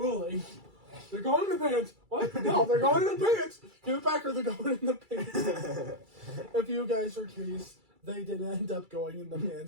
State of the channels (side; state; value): left; late; 2.3 ms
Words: They're going in the pants. What? No, they're going in the pants. Give it back or they're going in the pants. If you guys are curious, they did end up going in the